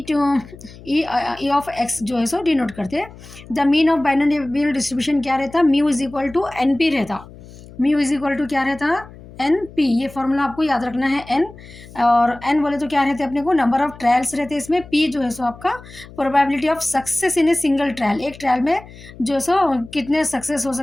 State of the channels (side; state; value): left; noise; hum, 19 dB below the sound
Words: ऑफ एक्स जो है सो डिनोट करते हैं। The mean of binomial distribution क्या रहता, mu is equal to N P रहता। म्यू इज इक्वल टू क्या रहता, एन पी। ये फॉर्मूला आपको याद रखना है। एन और एन बोले तो क्या रहते हैं अपने को, नंबर ऑफ ट्रायल्स रहते हैं इसमें। पी जो है सो आपका probability of success in a single trial, एक ट्रायल में जो है सो कितने सक्सेस हो